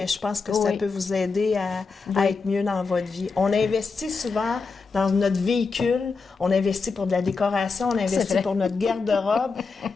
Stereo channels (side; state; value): right; quieter; 4.6 dB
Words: je pense que ça peut vous aider à être mieux dans votre vie. On investit souvent dans notre véhicule, on investit pour de la décoration, on investit pour notre garde-robe,